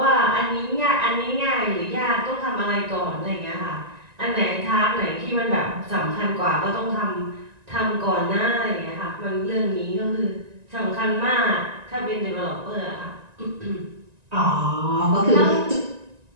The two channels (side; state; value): left; late; 1.9 ms